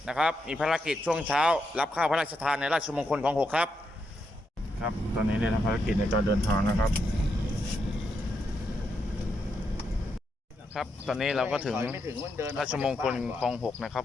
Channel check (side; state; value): both; normal; correlation 0.82